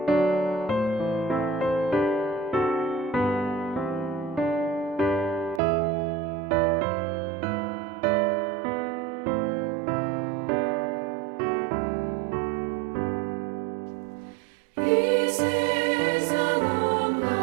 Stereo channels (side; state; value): left; drops out; at 5.6 s